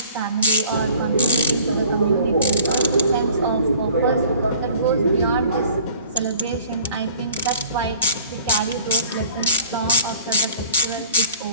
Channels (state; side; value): inverted; both; correlation -0.52